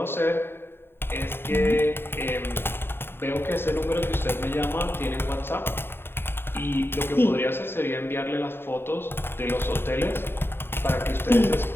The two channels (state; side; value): late; right; 0.11 ms